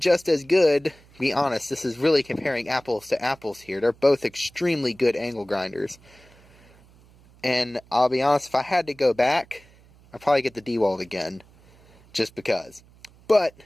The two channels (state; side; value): noise; right; hum, 27 dB below the sound